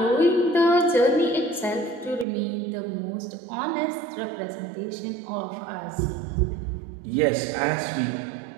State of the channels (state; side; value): drops out; left; at 2.2 s